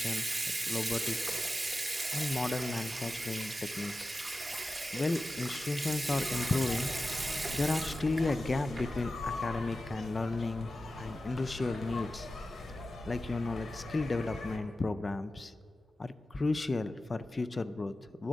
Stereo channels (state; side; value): normal; both; correlation 0.93